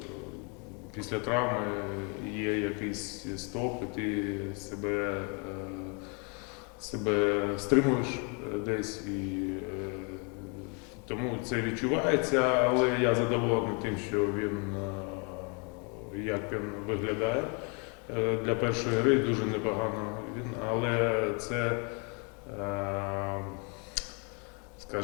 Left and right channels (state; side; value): quieter; right; 34.7 dB